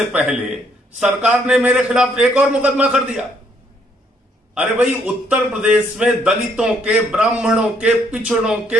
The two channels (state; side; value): normal; both; correlation 0.69